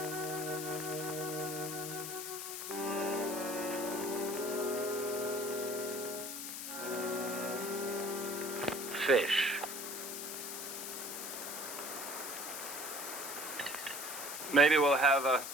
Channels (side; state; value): left; noise; hiss, 6 dB below the sound